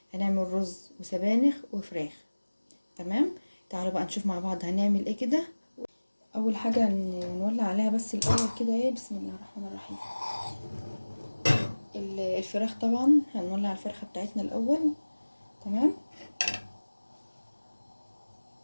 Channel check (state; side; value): inverted; both; correlation -1.00